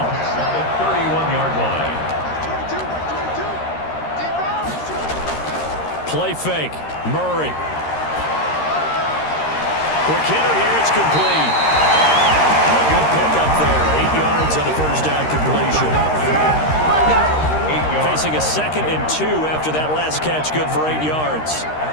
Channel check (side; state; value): right; late; 13 ms